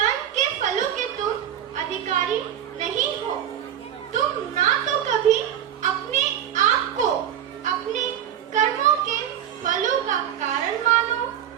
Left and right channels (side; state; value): left; quieter; 10.2 dB